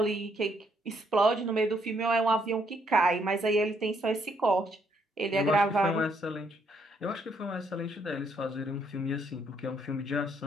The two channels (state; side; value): normal; both; correlation 0.71